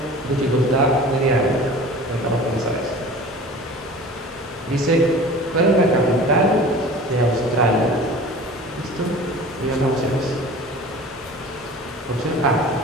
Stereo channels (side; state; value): both; normal; correlation 0.41